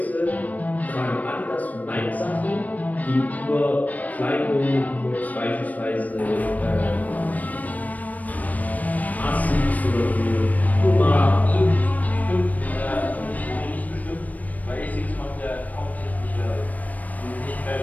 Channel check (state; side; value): late; right; 0.075 ms